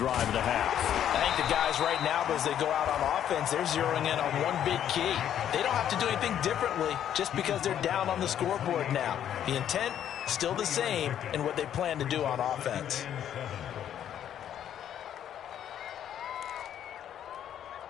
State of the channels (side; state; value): right; quieter; 10.1 dB